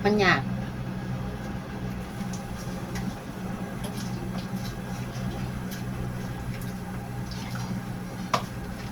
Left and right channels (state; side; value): identical; both; correlation 1.00